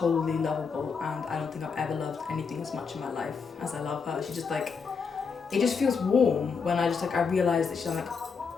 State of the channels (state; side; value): quieter; right; 5.5 dB